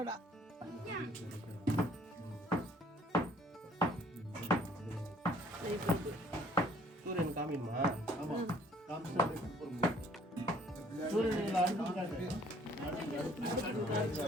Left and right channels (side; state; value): both; normal; correlation 0.59